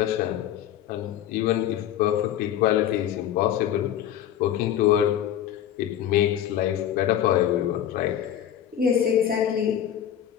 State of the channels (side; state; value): right; quieter; 10.7 dB